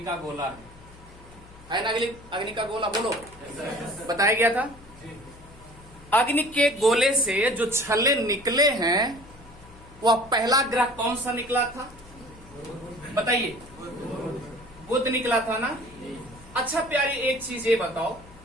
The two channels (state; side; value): noise; left; hum, 22 dB below the sound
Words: का गोला है ना? अग्नि का गोला बोलो, बताया गया था। अग्नि के गोले से जो छल्ले निकले हैं वह पहला ग्रह कौन सा निकला था? बताइए। बुध निकला था ना? अच्छा प्यारी, एक चीज ये बताओ,